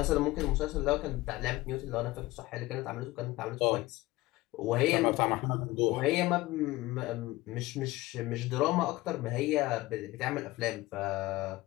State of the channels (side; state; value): right; quieter; 19.0 dB